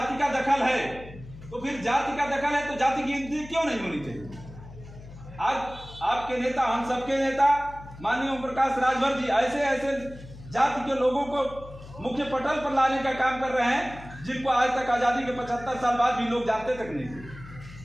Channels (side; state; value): left; noise; hum, 16 dB below the sound